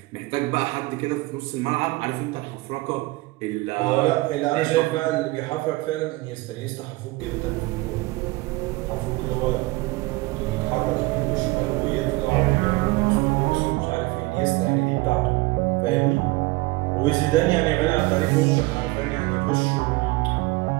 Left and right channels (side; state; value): left; quieter; 21.7 dB